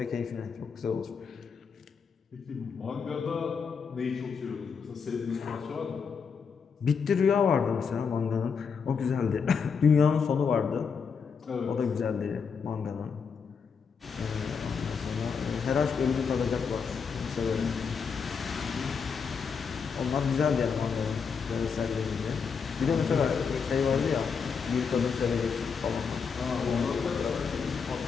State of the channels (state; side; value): quieter; right; 5.9 dB